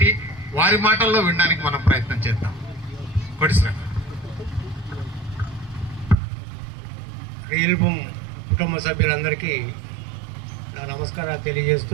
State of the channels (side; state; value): left; drops out; at 6.2 s